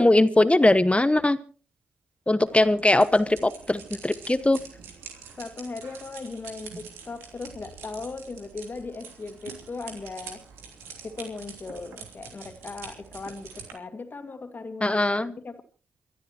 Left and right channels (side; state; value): both; normal; correlation 0.93